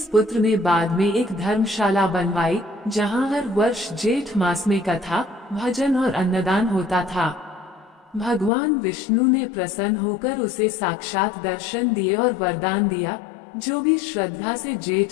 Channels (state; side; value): drops out; right; at 8.5 s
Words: पुत्र ने बाद में एक धर्मशाला बनवाई, जहां हर वर्ष जेठ मास में कथा, भजन और अन्नदान होता था। भगवान विष्णु ने प्रसन्न होकर उसे साक्षात दर्शन दिए और वरदान दिया, जो भी श्रद्धा से